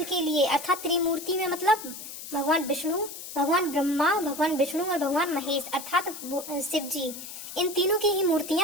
के लिए, अर्थात त्रिमूर्ति में मतलब भगवान विष्णु, भगवान ब्रह्मा, भगवान विष्णु और भगवान महेश अर्थात शिव जी, इन तीनों की ही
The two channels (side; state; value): left; noise; hiss, 11 dB below the sound